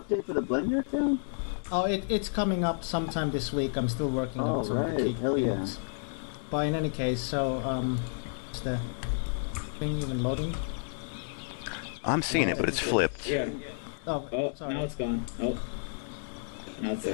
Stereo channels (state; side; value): silent; right; digital silence